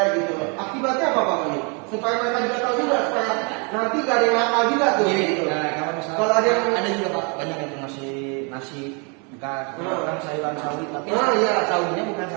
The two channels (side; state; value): left; quieter; 34.2 dB